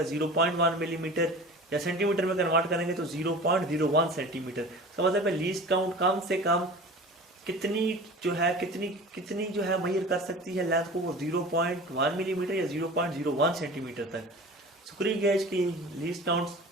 0.1 मिलीमीटर, या सेंटीमीटर में कन्वर्ट करेंगे तो 0.01 सेंटीमीटर। इसका मतलब है लीस्ट काउंट कम से कम कितनी जो है मेजर कर सकती है लेंथ को, वो 0.1 मिलीमीटर या 0.01 सेंटीमीटर तक। स्क्रू गेज की लीस्ट काउंट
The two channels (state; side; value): normal; both; correlation 0.38